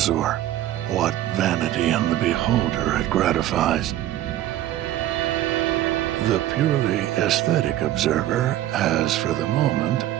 or what vanity in the beholder it gratifies. The purely aesthetic observer has, for the moment,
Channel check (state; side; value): quieter; left; 13.4 dB